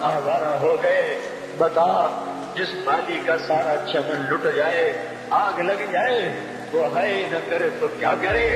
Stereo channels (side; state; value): both; identical; correlation 1.00